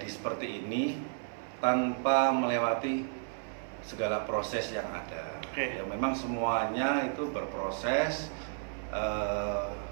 seperti ini tanpa melewati segala proses yang ada. Ya memang semuanya itu berproses,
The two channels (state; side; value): silent; left; 56 dB below the other